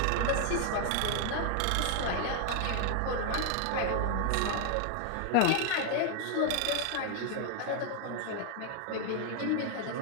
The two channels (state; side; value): different; both; correlation 0.00